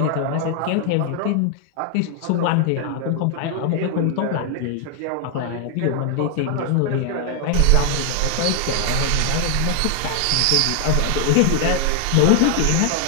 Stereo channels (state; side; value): different; both; correlation 0.00